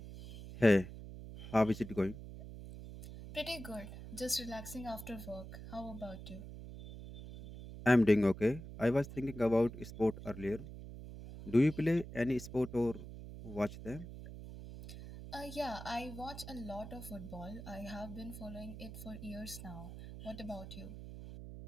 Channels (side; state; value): right; noise; hum, 12 dB below the sound